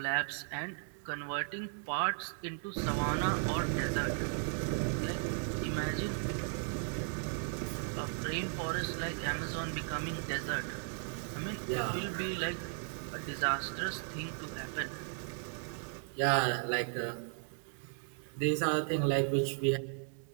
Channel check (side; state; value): left; silent; 54 dB below the other